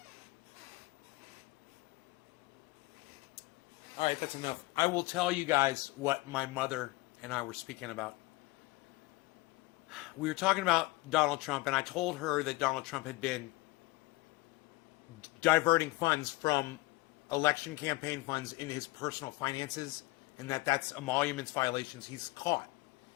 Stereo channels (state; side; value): quieter; right; 22.3 dB